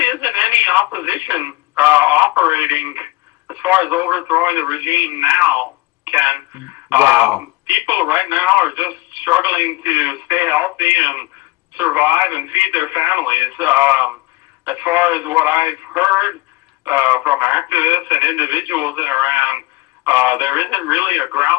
isn't any opposition operating as far as overthrowing the regime now, Ken. Wow. People right now are just struggling to stay healthy and survive and feed their families. As far as what I've heard from activists and individuals in Iran, there isn't really a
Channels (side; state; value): right; quieter; 21.3 dB